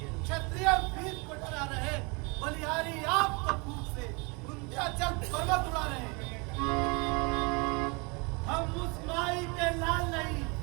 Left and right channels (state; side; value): quieter; left; 29.9 dB